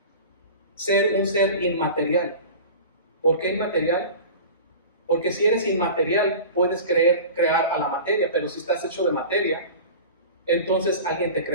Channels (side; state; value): both; inverted; correlation -0.36